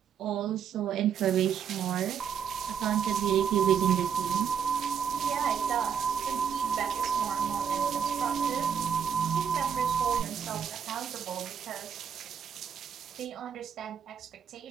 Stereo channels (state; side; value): quieter; left; 7.7 dB